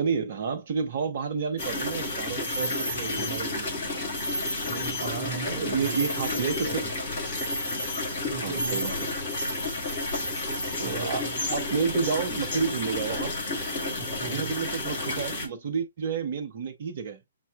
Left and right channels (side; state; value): both; inverted; correlation -0.54